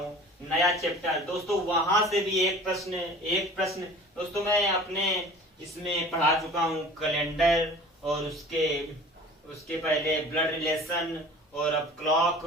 नया चैप्टर दोस्तों, वहां से भी एक प्रश्न दोस्तों मैं अपने इसमें पढ़ा चुका हूँ, कैलेंडर और उसके पहले ब्लड रिलेशन और अब क्लॉक,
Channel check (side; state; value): both; normal; correlation 0.43